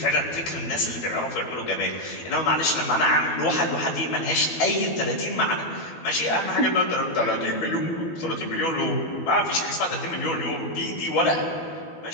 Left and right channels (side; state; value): right; late; 12 ms